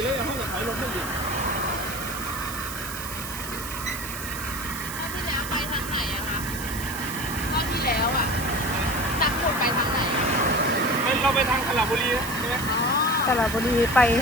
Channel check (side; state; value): right; noise; hiss, 9 dB below the sound